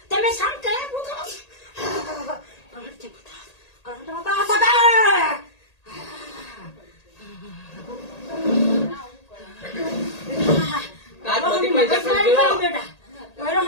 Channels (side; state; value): right; late; 1.8 ms